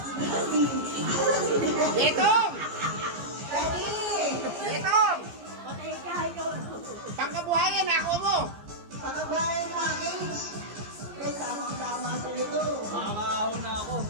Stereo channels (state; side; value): late; left; 14 ms